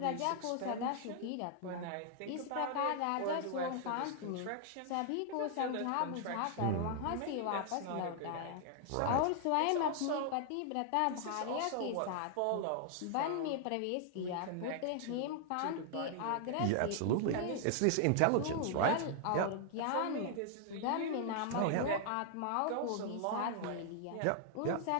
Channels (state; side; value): different; both; correlation 0.00